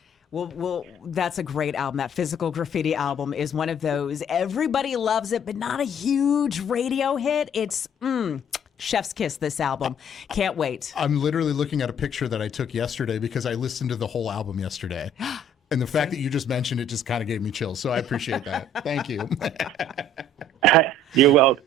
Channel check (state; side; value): normal; both; correlation 0.57